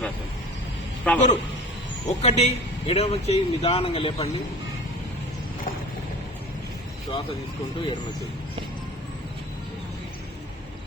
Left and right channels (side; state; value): both; normal; correlation 0.39